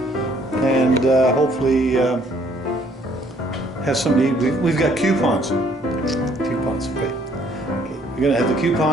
and hopefully have somebody. We've got coupons. Coupons, okay. We're gonna have the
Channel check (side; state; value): both; normal; correlation 0.63